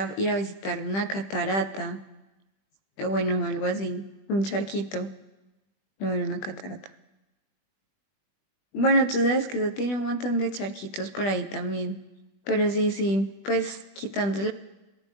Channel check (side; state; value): right; late; 20 ms